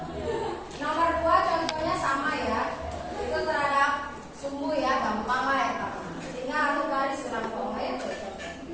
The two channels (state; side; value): identical; both; correlation 1.00